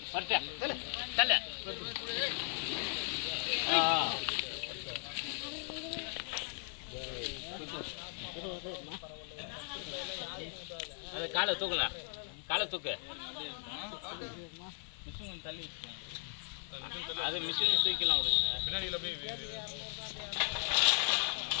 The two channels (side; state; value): right; silent; 53 dB below the other